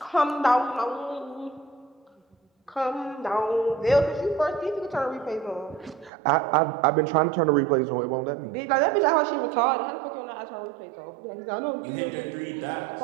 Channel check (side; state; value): left; drops out; at 6.1 s